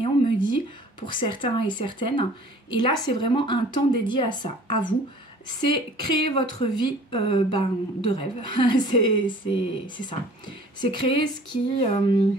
on me dit, pour certains et certaines. Et là, c'est vraiment un temps dédié à ça, à vous. C'est créer votre vie de rêve. c'est ça. C'est créer ce qui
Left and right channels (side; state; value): both; normal; correlation 0.49